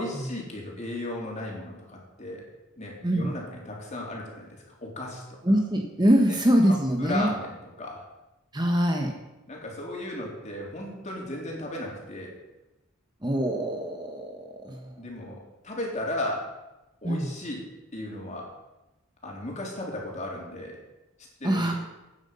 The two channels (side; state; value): both; normal; correlation 0.76